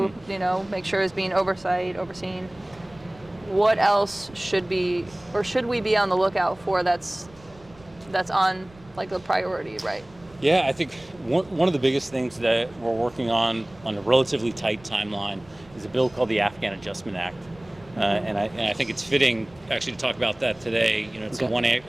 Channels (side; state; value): right; noise; rumble, 25 dB below the sound